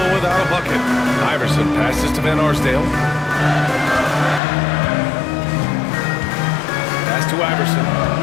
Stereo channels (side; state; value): right; drops out; at 4.4 s